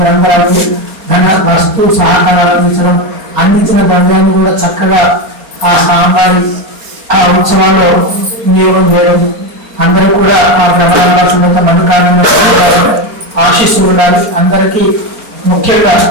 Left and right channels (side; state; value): left; late; 4.3 ms